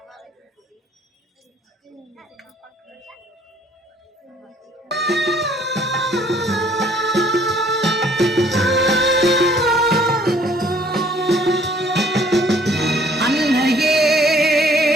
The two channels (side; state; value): both; normal; correlation 0.59